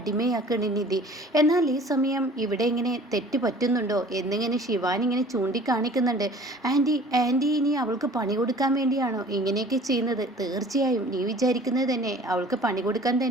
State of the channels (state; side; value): normal; both; correlation 0.49